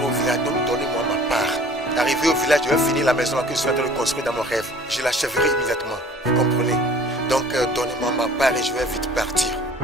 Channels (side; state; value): both; normal; correlation 0.50